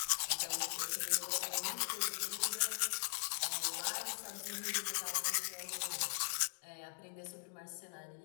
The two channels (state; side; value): silent; right; digital silence